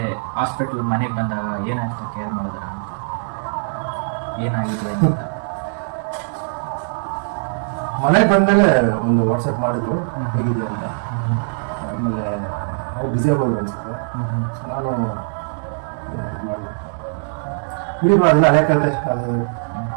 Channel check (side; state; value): left; silent; digital silence